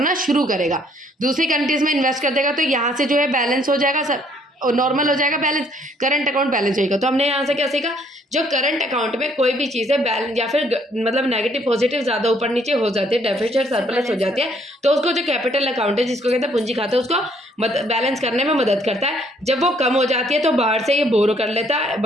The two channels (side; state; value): both; normal; correlation 0.65